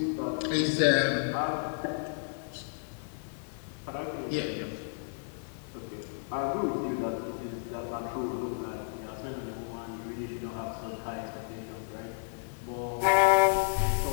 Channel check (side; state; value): right; silent; 57 dB below the other